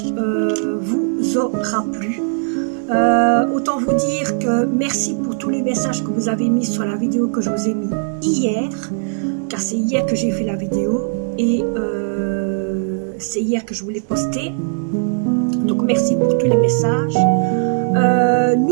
vous aura plu. Autant vous dire que merci pour tous les messages que vous avez mis sur la vidéo que je vous ai mis hier, car c'est hier que j'ai fait la vidéo et c'est hier que je vous l'ai postée. Donc merci pour tous les messages.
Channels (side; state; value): left; silent; digital silence